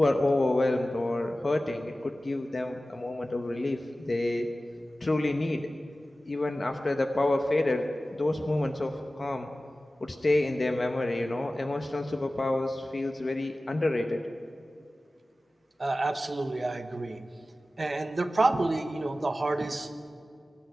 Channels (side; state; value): both; normal; correlation 0.96